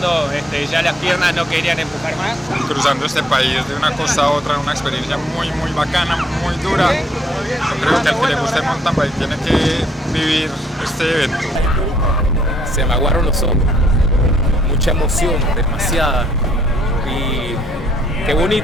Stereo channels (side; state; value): both; normal; correlation 0.69